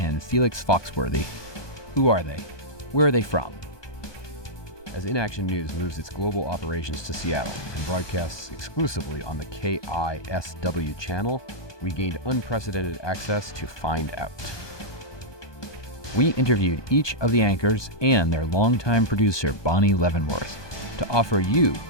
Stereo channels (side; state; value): right; late; 1.2 ms